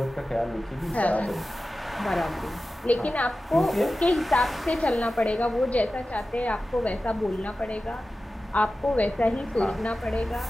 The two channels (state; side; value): normal; both; correlation 0.95